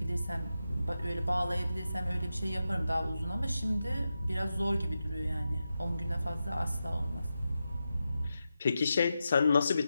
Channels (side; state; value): both; inverted; correlation -0.90